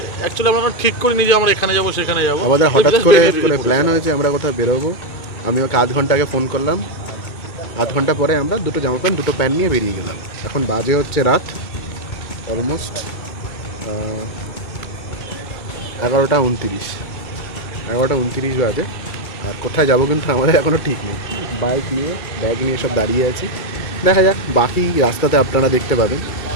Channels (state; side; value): late; right; 2.2 ms